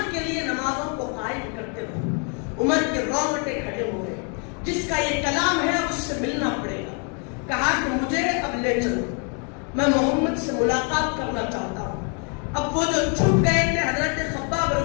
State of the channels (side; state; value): right; quieter; 38.9 dB